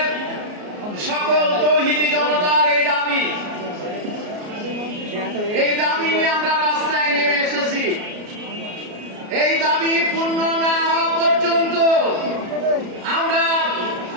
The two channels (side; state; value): left; late; 33 ms